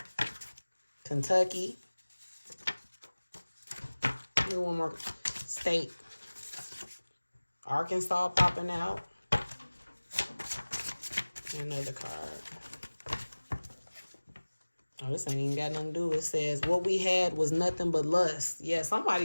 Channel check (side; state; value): both; inverted; correlation -1.00